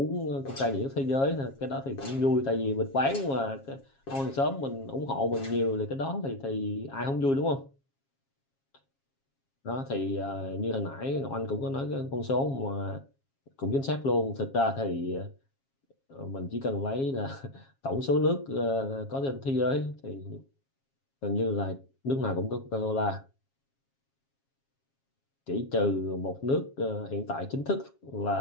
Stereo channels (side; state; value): right; late; 7.4 ms